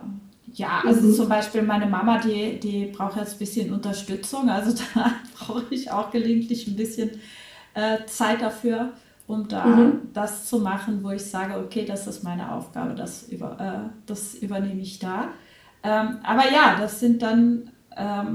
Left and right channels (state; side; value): identical; both; correlation 1.00